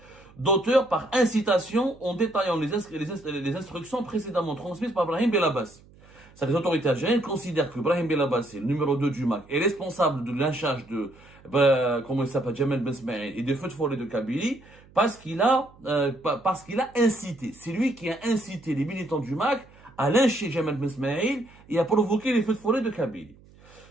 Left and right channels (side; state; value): right; noise; hum, 25 dB below the sound